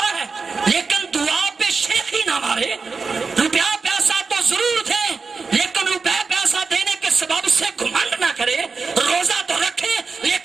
ہے، لیکن دعا پہ شیخی نہ مارے. روپیہ پیسہ تو ضرور دیں، لیکن روپیہ پیسہ دینے کے سبب سے گھمنڈ نہ کرے. روزہ تو رکھے،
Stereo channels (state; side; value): quieter; left; 4.7 dB